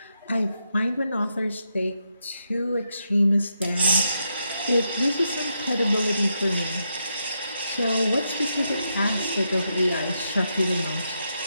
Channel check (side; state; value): both; inverted; correlation -0.82